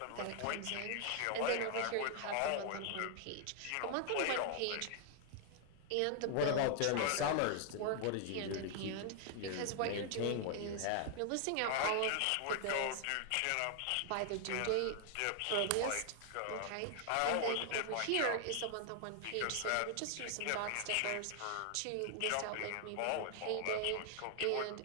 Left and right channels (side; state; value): both; different; correlation 0.00